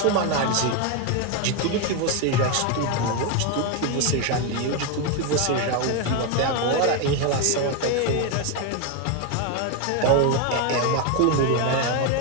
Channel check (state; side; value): different; both; correlation 0.02